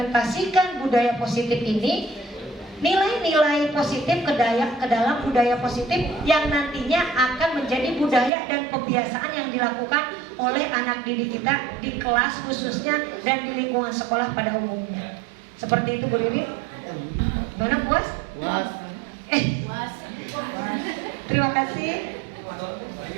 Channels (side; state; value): left; drops out; at 8.3 s